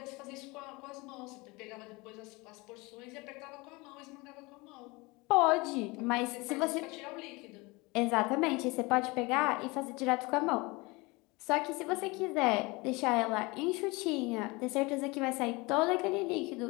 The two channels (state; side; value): quieter; right; 24.7 dB